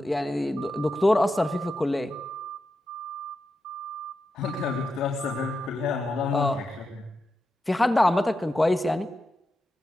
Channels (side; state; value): both; normal; correlation 0.88